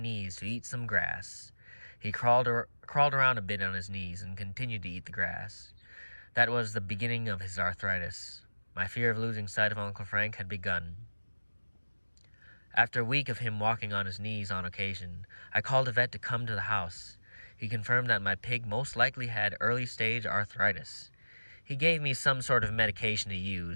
to eat some grass. He crawled around a bit on his knees and continued to eat the grass. That was the beginning of his arthritis. My fear of losing sight of Uncle Frank had begun. After a week of him walking on his knees on occasion, I called a vet to come to the house. He confirmed that my pig most likely had early-stage arthritis. He gave me some sort of medication to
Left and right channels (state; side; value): inverted; both; correlation -1.00